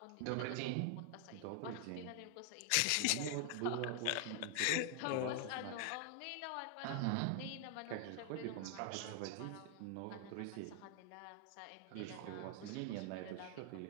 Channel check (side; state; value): both; different; correlation 0.00